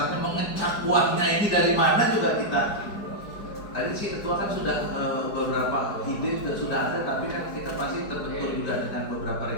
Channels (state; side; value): late; right; 4.9 ms